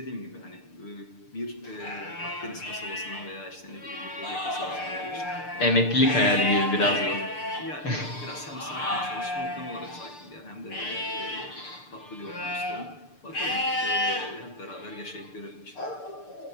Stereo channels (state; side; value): late; right; 6.8 ms